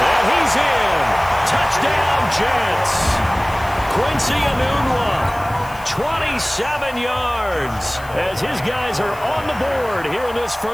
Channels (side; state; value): left; noise; hiss, 21 dB below the sound